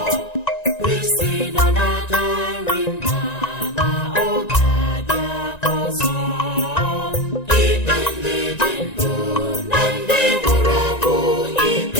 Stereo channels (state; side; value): late; right; 1.9 ms